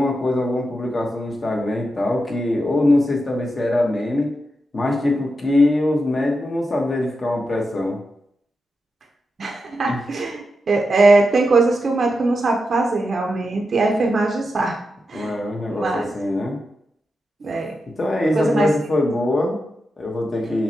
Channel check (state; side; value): normal; both; correlation 0.88